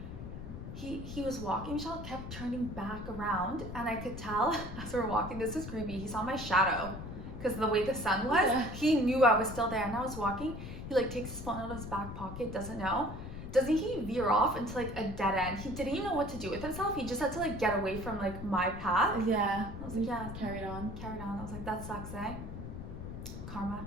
He was walking, Michelle kept turning back around and I could tell as we were walking, this is creepy, he saw my shadow because the way the sun was, Yeah. he knew I was still there and I was walking. He like takes his phone out of his back pocket, doesn't know. Doesn't he veer off into like a dead end? He didn't even know what to do with himself. He just had to like get away from like my path. Yeah. I was like, yeah, Carried on. carried on. I was like, that sucks, eh? Karma.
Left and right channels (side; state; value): left; noise; rumble, 9 dB below the sound